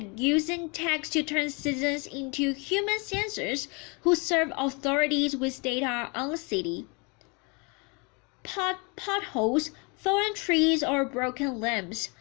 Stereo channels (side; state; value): right; quieter; 31.4 dB